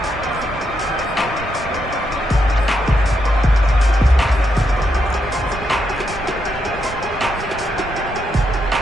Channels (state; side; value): normal; both; correlation 0.81